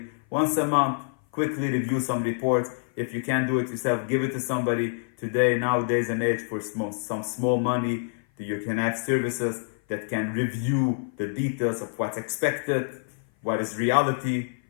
once a month quickly review some reports. If you can't do it yourself, give it to somebody. Today, nowadays and age, for some small money, you can have services that can review the details of what's expected, what is reality,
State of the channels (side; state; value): right; silent; 56 dB below the other